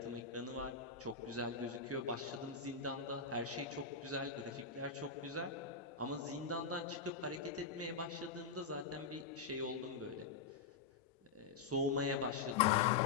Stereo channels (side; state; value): right; quieter; 5.1 dB